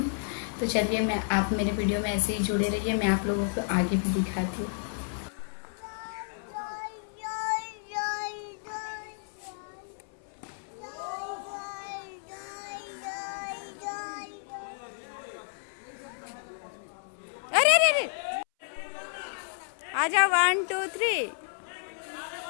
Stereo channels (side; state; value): right; silent; 57 dB below the other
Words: तो चलिए, आप मेरे वीडियो में ऐसे ही जुड़े रहिए, मैं आप लोगों को आगे भी दिखाती हूँ। अरे अरे अरे, आ जाओ, 1 2 3।